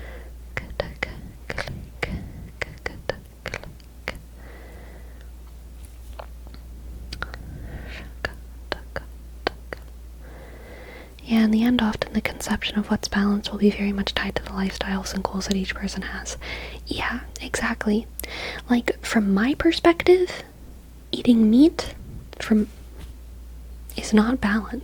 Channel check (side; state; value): both; identical; correlation 1.00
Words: Yeah, in the end, often the conception of what's balanced will be very much tied to the lifestyles and goals that each person has. Yeah, exactly. Like, from my perspective, eating meat is not